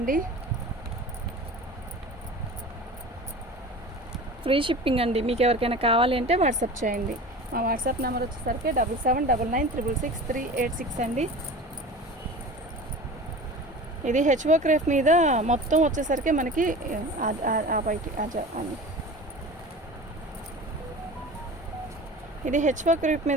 ఫ్రీ షిప్పింగ్ అండి. మీకు ఎవరికైనా కావాలి అంటే వాట్సాప్ చేయండి. మా వాట్సాప్ నెంబర్ వచ్చేసరికి 7799666386 అండి. ఇది హెచ్ఓ క్రేప్ మీద మొత్తం వచ్చేసరికి మనకి ఇది హెచ్ఓ క్రేప్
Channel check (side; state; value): both; normal; correlation 0.36